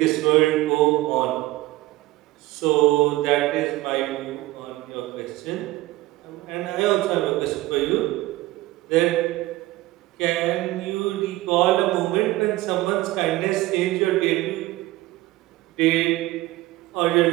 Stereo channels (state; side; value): quieter; left; 18.0 dB